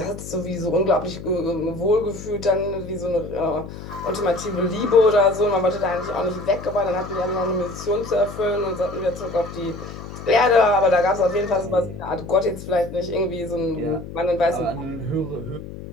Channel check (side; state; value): left; noise; hum, 12 dB below the sound